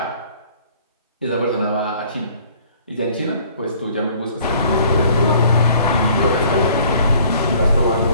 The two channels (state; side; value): inverted; both; correlation -0.56